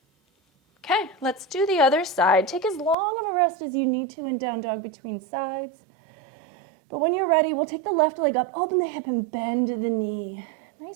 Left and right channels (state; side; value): drops out; left; at 3.0 s